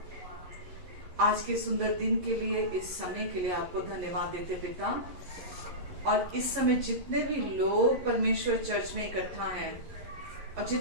आज के सुंदर दिन के लिए, इस समय के लिए आपको धन्यवाद देते पिता। और इस समय जितने भी लोग परमेश्वर चर्च में इकट्ठा हैं और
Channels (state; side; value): late; left; 11 ms